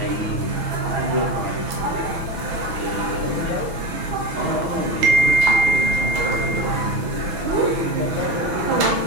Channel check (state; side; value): late; left; 6.1 ms